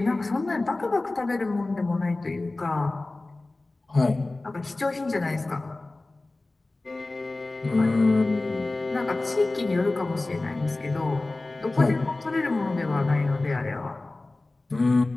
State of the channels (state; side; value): quieter; right; 3.1 dB